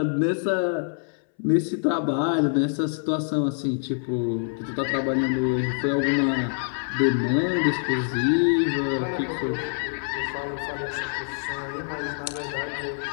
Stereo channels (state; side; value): silent; right; 61 dB below the other